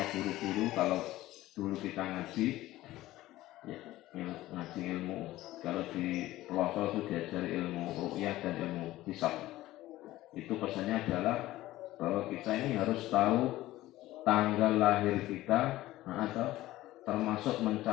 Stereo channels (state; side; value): quieter; right; 16.3 dB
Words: guru-guru kalau dulu kita ngaji ya, ngaji ilmu, kalau di pelosok itu diajari ilmu ru'yah dan ilmu hisab. Itu pesannya adalah bahwa kita ini harus tahu tanggal lahir kita atau termasuk